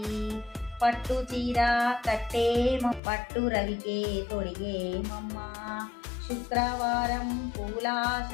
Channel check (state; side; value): drops out; right; at 3.0 s